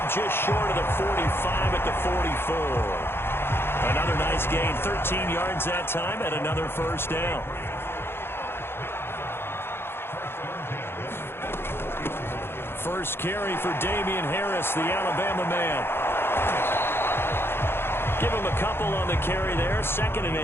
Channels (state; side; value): late; right; 0.11 ms